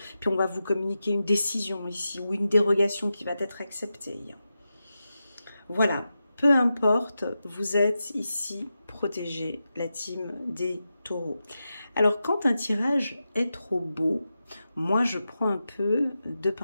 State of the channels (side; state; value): both; inverted; correlation -0.90